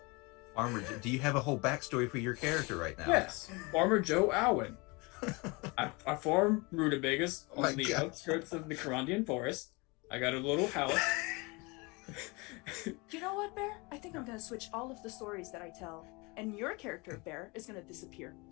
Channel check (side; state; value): right; quieter; 27.0 dB